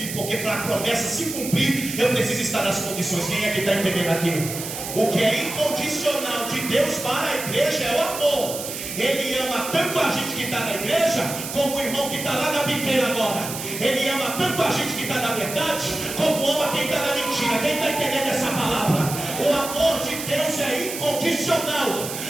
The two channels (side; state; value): right; noise; hiss, 7 dB below the sound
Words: porque para a promessa se cumprir, eu preciso estar nas condições. Quem é que está entendendo aqui? O que é incondicional de Deus para a igreja é o amor. Ele ama tanto a gente que está na igreja, como o irmão que está lá na biqueira agora. Ele ama tanto a gente que está na verdade, como ama quem está na mentira. Quem está entendendo essa palavra? O amor de Deus é incondicional.